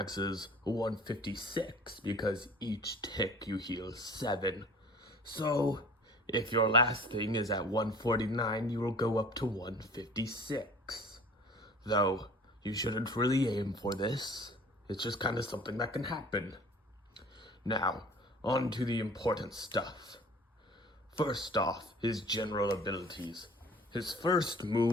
is 156 because each tick you heal 7. So, if your last thing is at 149, you will go up to 156. Though, you shouldn't really aim for this. It's just kind of something that can happen. Now, on to the important stuff. First off, his general abilities. His first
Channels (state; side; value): normal; both; correlation 0.47